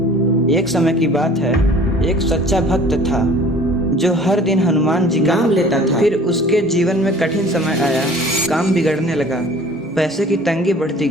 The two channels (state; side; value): normal; both; correlation 0.48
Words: एक समय की बात है, एक सच्चा भक्त था जो हर दिन हनुमान जी का नाम लेता था। फिर उसके जीवन में कठिन समय आया, काम बिगड़ने लगा, पैसे की तंगी बढ़ती